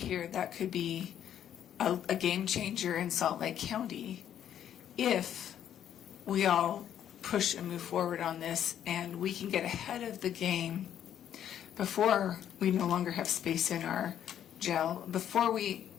that could be a game changer in Salt Lake County if we all push and move forward on this and we can get ahead of the game before we no longer have space in our jail, before we're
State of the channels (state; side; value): quieter; right; 10.1 dB